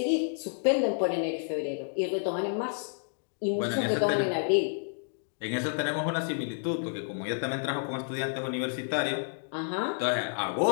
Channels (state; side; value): silent; right; digital silence